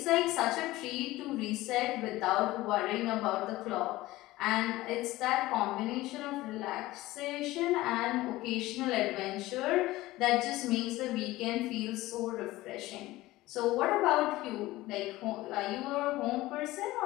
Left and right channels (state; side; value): quieter; right; 17.9 dB